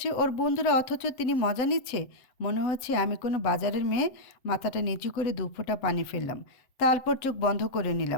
ওর বন্ধুরা, অথচ তিনি মজা নিচ্ছে। মনে হচ্ছে আমি কোনো বাজারের মেয়ে। মাথাটা নিচু করে 2 ফোঁটা পানি ফেললাম, তারপর চোখ বন্ধ করে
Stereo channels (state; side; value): late; right; 7.8 ms